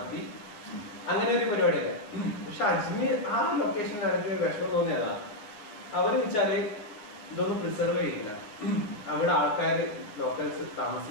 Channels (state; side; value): late; right; 9.6 ms